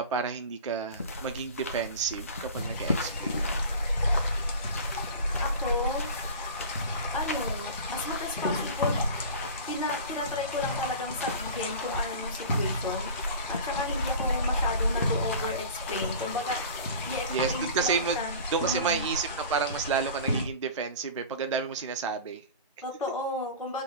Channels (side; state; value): both; inverted; correlation -0.35